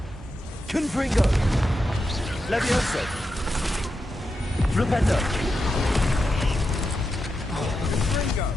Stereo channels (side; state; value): both; normal; correlation 0.87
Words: Confringo. Levioso. Flipendo.